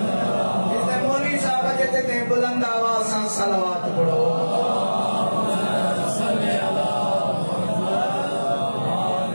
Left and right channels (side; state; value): both; inverted; correlation -1.00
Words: मौलवी साहब जे ते बुलंद आवाज़ सां सलवात पढ़ो।